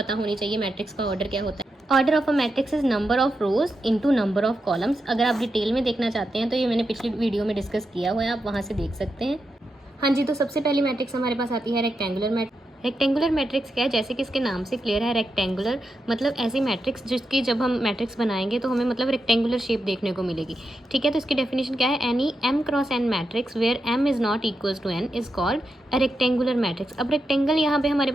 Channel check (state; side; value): normal; both; correlation 0.87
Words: होनी चाहिए, मैट्रिक्स का ऑर्डर क्या होता है। Order of a matrix is number of rose into number of columns. अगर आप डिटेल में देखना चाहते हैं तो ये मैंने पिछली वीडियो में डिस्कस किया हुआ है, आप वहाँ से देख सकते हैं। हाँ जी, तो सबसे पहली मैट्रिक्स हमारे पास आती है रेक्टेंगुलर मैट्रिक्स। रेक्टेंगुलर मैट्रिक्स क्या है, जैसे कि इसके नाम से क्लियर है, रेक्टेंगुलर मतलब ऐसी मैट्रिक्स जिसकी जब हम मैट्रिक्स बनाएंगे तो हमें मतलब रेक्टेंगुलर शेप देखने को मिलेगी। ठीक है, तो इसकी डेफिनेशन क्या है, any m cross n matrix where m is not equals to n is called a rectangular matrix. अब रेक्टेंगल यहाँ पे हमारे